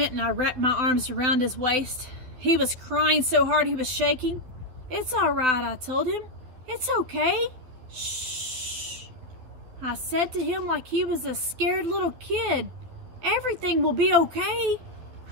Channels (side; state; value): left; late; 12 ms